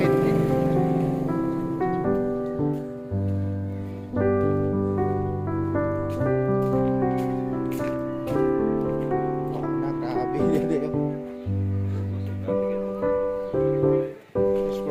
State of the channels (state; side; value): identical; both; correlation 1.00